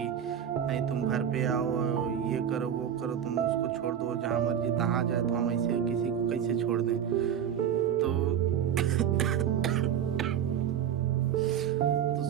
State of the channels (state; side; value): quieter; left; 9.1 dB